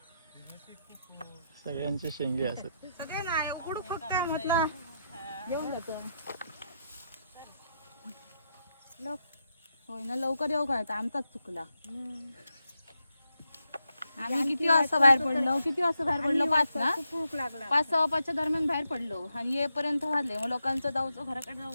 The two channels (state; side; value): inverted; both; correlation -0.83